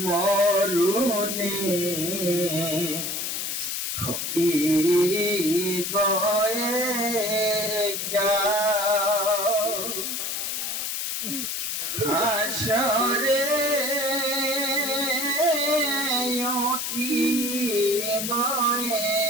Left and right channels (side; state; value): left; noise; hiss, 2 dB below the sound